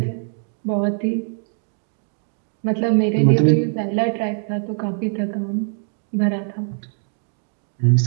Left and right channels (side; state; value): left; silent; 59 dB below the other